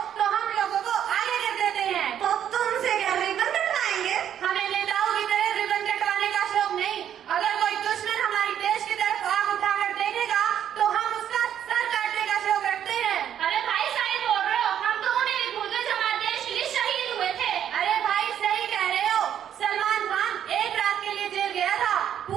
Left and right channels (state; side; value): quieter; left; 9.8 dB